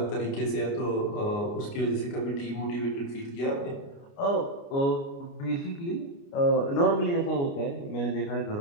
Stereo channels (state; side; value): late; right; 29 ms